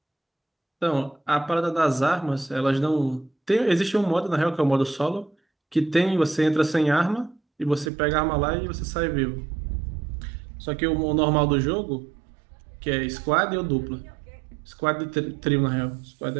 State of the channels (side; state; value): left; drops out; at 7.9 s